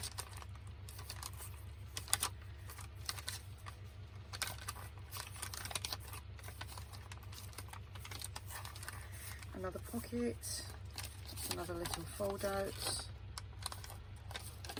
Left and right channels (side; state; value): both; identical; correlation 1.00